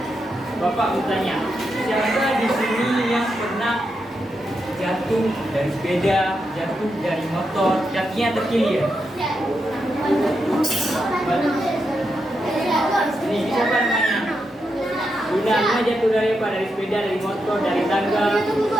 Bapak bertanya, siapa di sini yang pernah jatuh dari sepeda, jatuh dari motor, kakinya terkilir? Ini siapa namanya? Luna jatuh dari apa? Dari sepeda, dari motor, dari tangga,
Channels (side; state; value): both; normal; correlation 0.84